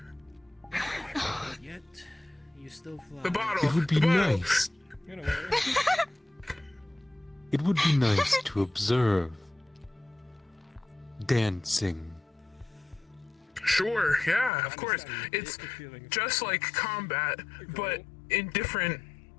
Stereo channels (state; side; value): drops out; right; at 14.5 s